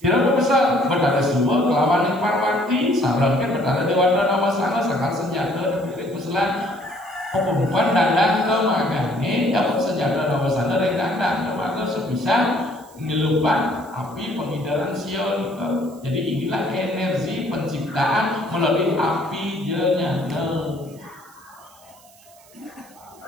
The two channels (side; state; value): right; noise; hiss, 26 dB below the sound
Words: pesal betara semua kelawan yang parwati sarankan betara dewata nama sana sekal senjata dari peselan pembukaan dandang ke magane dapat senjata nama sana dari dandang ke maka sebisa melupakan api pengidaran sion jadi inilah energi penciptaan melalui api jengana